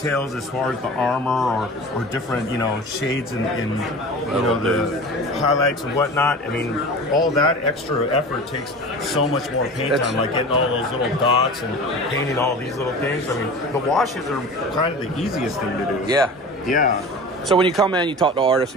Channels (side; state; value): both; normal; correlation 0.35